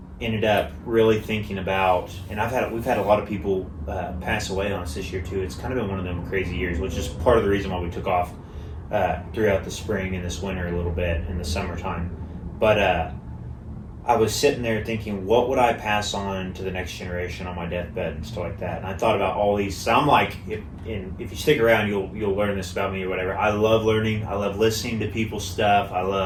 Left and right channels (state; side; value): identical; both; correlation 1.00